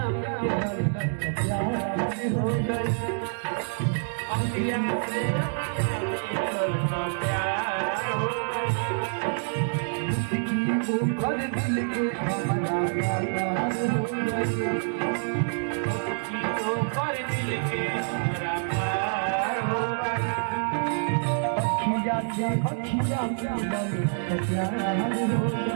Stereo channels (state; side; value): silent; left; digital silence